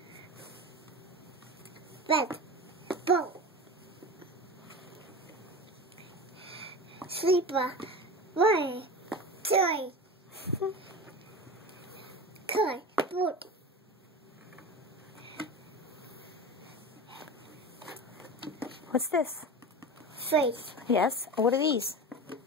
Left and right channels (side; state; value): both; normal; correlation 0.29